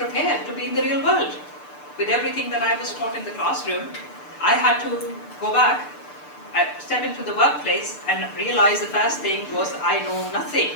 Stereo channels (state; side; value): late; right; 6.7 ms